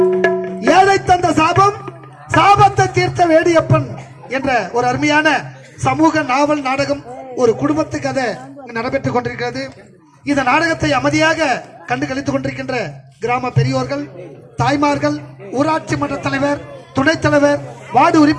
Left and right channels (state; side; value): identical; both; correlation 1.00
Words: ஏழை தந்த சாபம் சாபத்தை தீர்த்த வேடியப்பன் என்ற ஒரு அருமையான சமூக நாவல் நாடகம் ஒரு குடும்பத்து கதை நடைபெற்றுக் கொண்டிருக்கிறது. இந்த நாடகத்தை அமைதியாக கண்டு கழித்துக் கொண்டிருக்கின்ற கிராம பெரியோர்கள், தாய்மார்கள், ஊராட்சி மன்ற தலைவர், துணைத் தலைவர், வார்டு